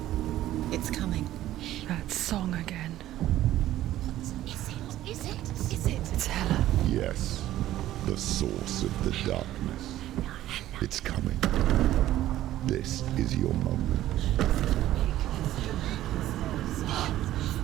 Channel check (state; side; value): quieter; left; 13.8 dB